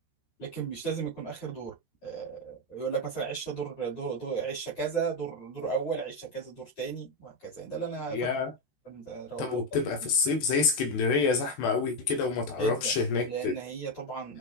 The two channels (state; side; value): late; right; 14 ms